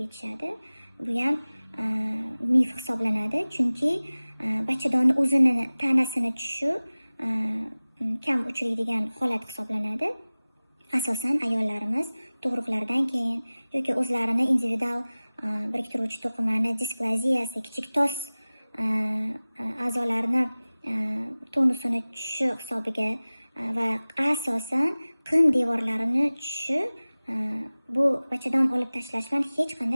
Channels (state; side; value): inverted; both; correlation -0.98